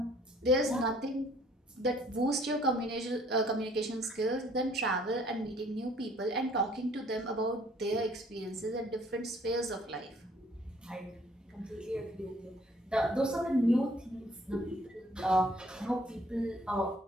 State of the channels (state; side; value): normal; both; correlation 0.59